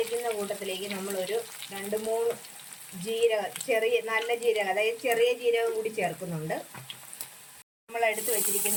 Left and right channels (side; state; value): both; identical; correlation 1.00